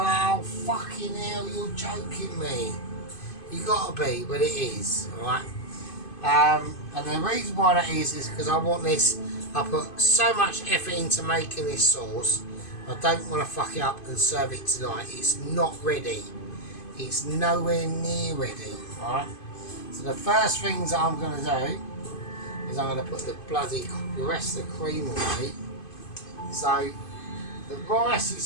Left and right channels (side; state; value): right; late; 2.5 ms